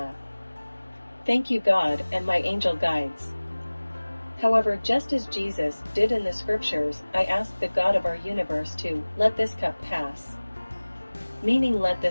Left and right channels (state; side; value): inverted; both; correlation -1.00